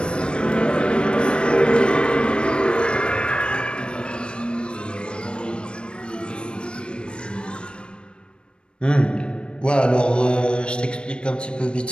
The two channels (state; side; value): late; right; 0.055 ms